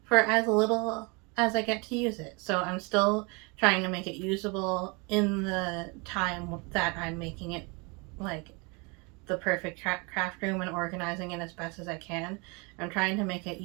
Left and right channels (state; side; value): quieter; left; 29.8 dB